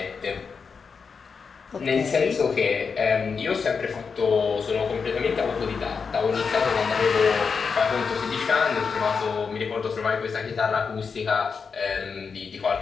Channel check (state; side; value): quieter; right; 5.5 dB